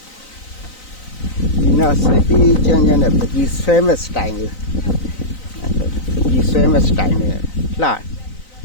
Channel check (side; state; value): right; late; 3.9 ms